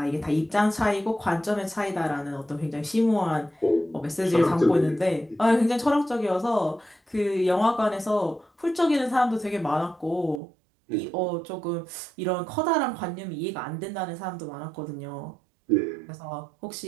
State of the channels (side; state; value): left; drops out; at 10.4 s